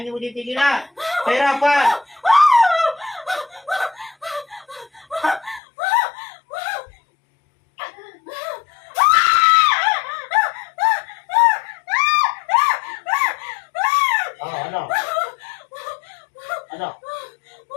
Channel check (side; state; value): right; drops out; at 5.6 s